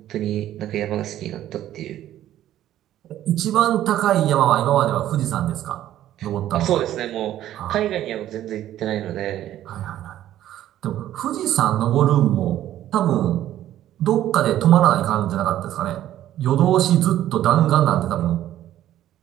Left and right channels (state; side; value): quieter; left; 12.6 dB